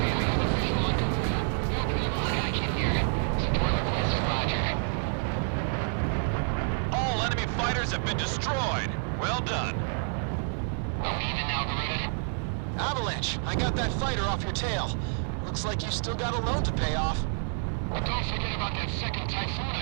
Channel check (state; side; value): silent; left; 59 dB below the other